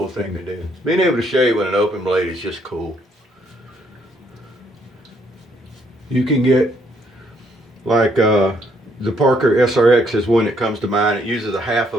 thing to do. Being able to shave with an open blade is just cool. You can get, like the Parker SRX is one that comes to mind. It uses a half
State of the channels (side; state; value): both; normal; correlation 0.69